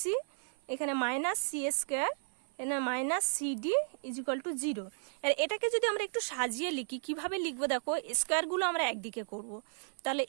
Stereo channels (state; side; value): silent; left; 55 dB below the other